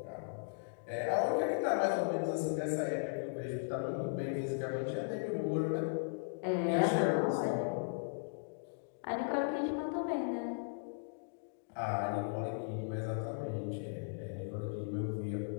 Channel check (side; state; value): right; silent; digital silence